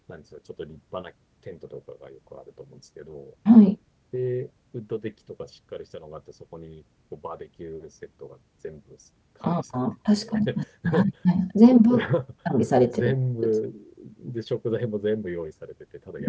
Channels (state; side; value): identical; both; correlation 1.00